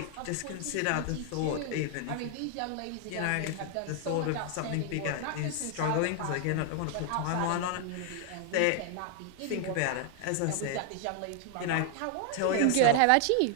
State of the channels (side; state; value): both; different; correlation 0.00